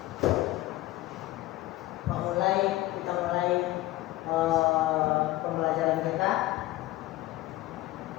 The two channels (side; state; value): right; quieter; 17.1 dB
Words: Kita mulai pembelajaran kita.